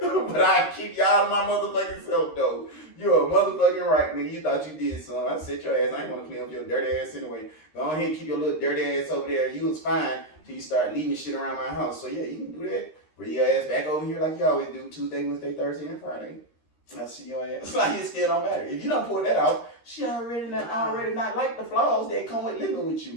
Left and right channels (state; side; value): late; right; 13 ms